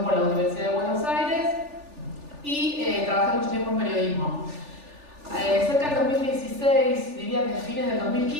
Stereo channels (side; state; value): left; late; 3.4 ms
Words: la Universidad de Buenos Aires y trabajé mucho tiempo en periodismo. Cerca del 2016, diría que a fines del